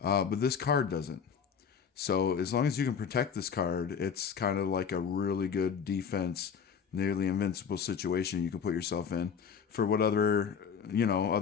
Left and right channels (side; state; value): right; quieter; 6.9 dB